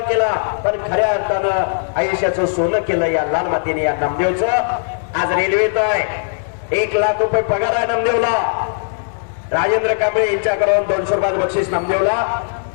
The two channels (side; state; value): right; silent; 63 dB below the other